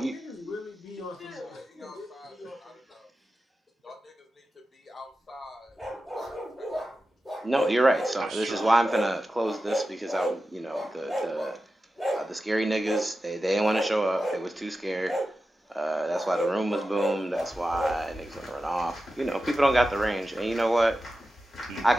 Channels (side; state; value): both; normal; correlation 0.92